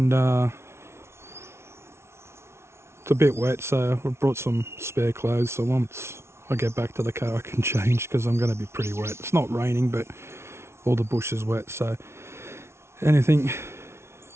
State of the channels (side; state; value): left; late; 0.13 ms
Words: it's a bit wet, so I brought some spare clothes, so once I get back to the car I can change because I'm going to be pretty wet. It's not raining, but all the bush is wet, so anything